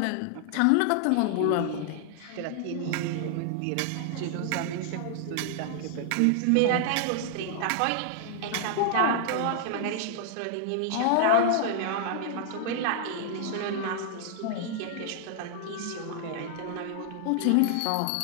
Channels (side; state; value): both; different; correlation 0.00